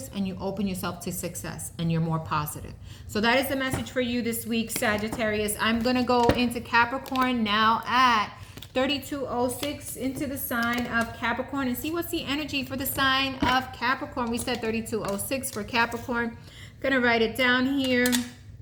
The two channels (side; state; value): both; identical; correlation 1.00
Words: and you open yourself to success and you're more positive. So that is the message for you this week, Sagittarius. I'm going to go into Capricorn now at 3206 into the sign of Capricorn and see what's the energy for the sign of Capricorn. We said 3206 for Capricorn. Gonna write it down here.